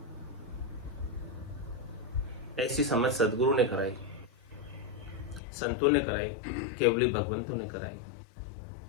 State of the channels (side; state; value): right; drops out; at 5.4 s